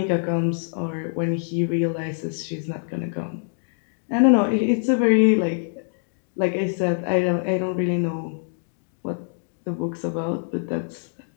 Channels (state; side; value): silent; right; digital silence